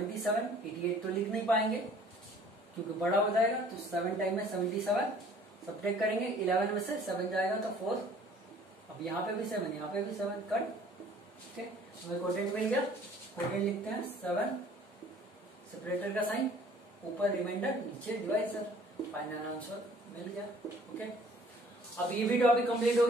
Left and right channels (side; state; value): both; normal; correlation 0.54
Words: 88 तो लिख नहीं पाएंगे क्योंकि बड़ा हो जाएगा, तो 7 टाइम में 77, सब्ट्रैक्ट करेंगे 11 में से 7 जाएगा तो 4। अब यहाँ पे भी 7, यहाँ पे भी 7, कट। ठीक है, हमें कोटेंट मिल गया, कोटेंट लिखते हैं 7, सेपरेटर का साइन, ऊपर रिमाइंडर, नीचे डिवाइजर, फाइनल आंसर मिल गया। ओके, अब ये भी टॉपिक कंप्लीट हो